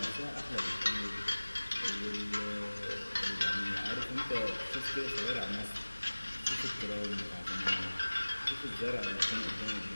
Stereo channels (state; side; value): inverted; both; correlation -1.00